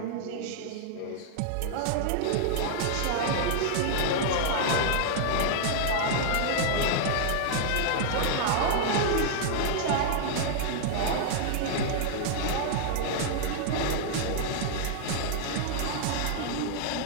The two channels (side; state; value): both; different; correlation -0.01